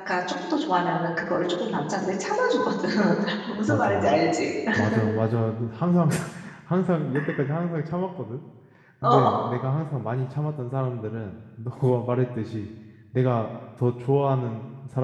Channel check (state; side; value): identical; both; correlation 1.00